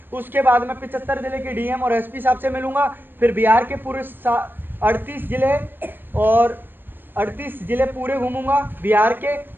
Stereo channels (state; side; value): late; left; 0.096 ms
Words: उसके बाद में 75 जिले के DM और SP साहब से मिलूंगा। फिर बिहार के पूरे 38 जिले और 38 जिले पूरे घूमूंगा बिहार के।